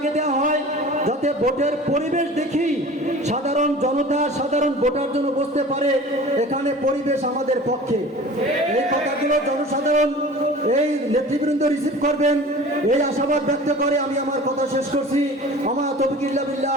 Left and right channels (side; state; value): both; normal; correlation 0.40